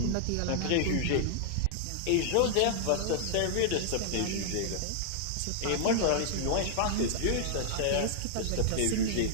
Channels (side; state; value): both; different; correlation -0.01